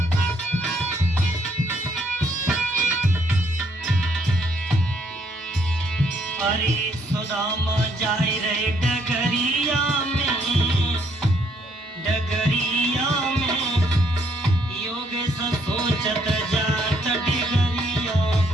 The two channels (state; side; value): normal; both; correlation 0.69